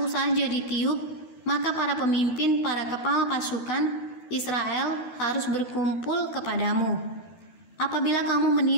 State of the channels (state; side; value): late; right; 12 ms